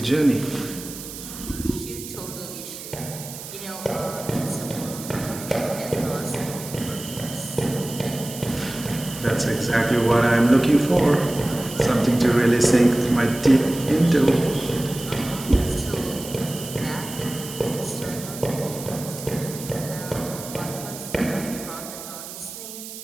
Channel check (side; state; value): right; noise; hiss, 12 dB below the sound